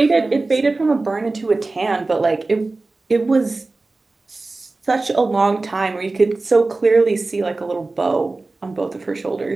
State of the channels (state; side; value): quieter; left; 3.4 dB